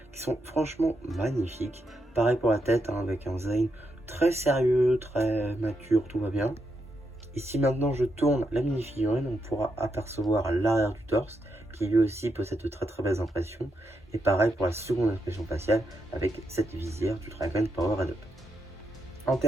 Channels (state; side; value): normal; both; correlation 0.82